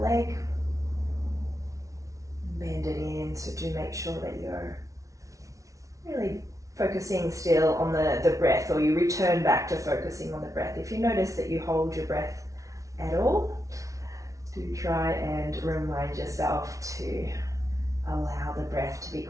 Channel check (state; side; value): late; left; 0.16 ms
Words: leg. Bend it in, so do make sure that you're really focusing still on the breath, or you return back to focusing on the breath. If you notice that you hold your breath at all, do try and remind yourself to allow the breath to be